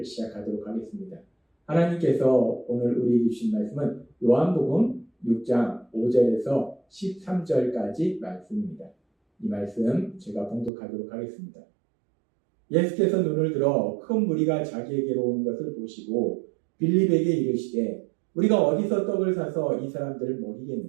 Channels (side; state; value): left; drops out; at 10.7 s